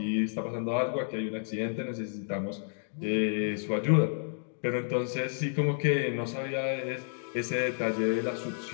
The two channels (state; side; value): silent; right; digital silence